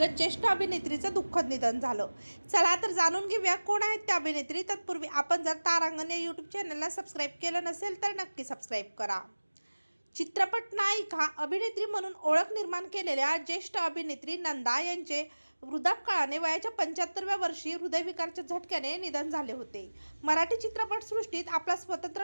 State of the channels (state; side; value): inverted; both; correlation -1.00